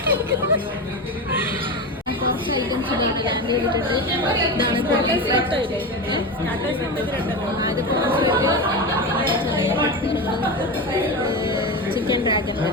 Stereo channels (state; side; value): normal; both; correlation 0.21